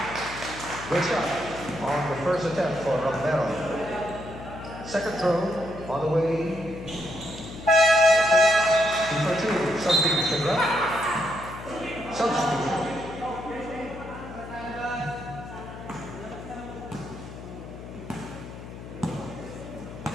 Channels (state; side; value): noise; left; hum, 12 dB below the sound